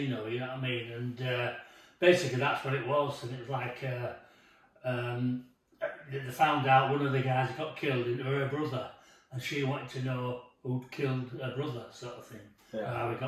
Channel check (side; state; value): both; identical; correlation 1.00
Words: you know what I mean? And basically that's what it was, and it was like they found out one of the guys got killed and her brother, and she wanted to know who'd killed her brother, sort of thing, how he